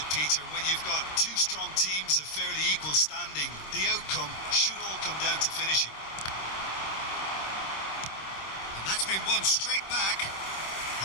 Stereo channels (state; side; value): late; right; 26 ms